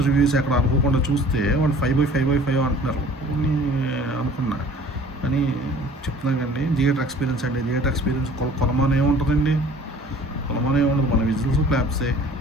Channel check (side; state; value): both; normal; correlation 0.49